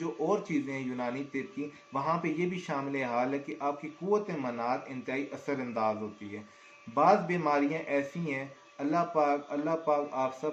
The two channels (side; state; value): both; identical; correlation 1.00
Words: और चीज़ें हैं यूनानी तिब की, वहाँ पे ये भी शामिल हाल है कि आपकी कुव्वत मनात इंतहाई असरअंदाज होती है। बाज़ बीमारियाँ ऐसी हैं, अल्लाह पाक आप